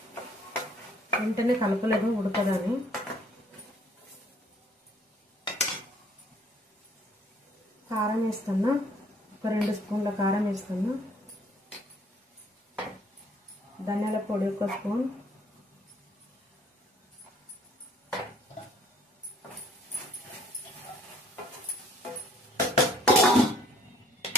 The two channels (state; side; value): normal; both; correlation 0.61